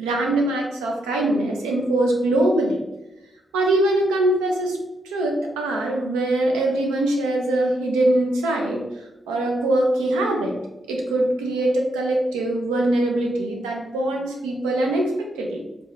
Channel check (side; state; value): both; normal; correlation 0.78